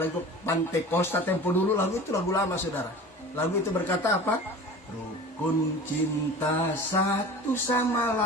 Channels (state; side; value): normal; both; correlation 0.38